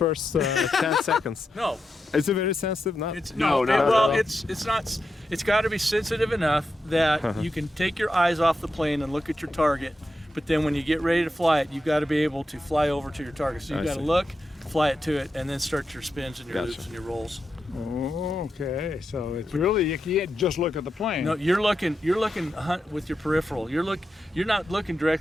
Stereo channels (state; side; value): normal; both; correlation 0.87